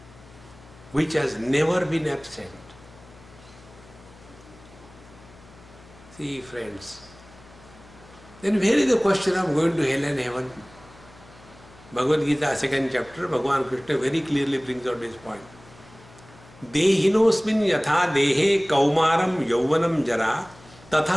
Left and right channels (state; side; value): noise; left; hum, 23 dB below the sound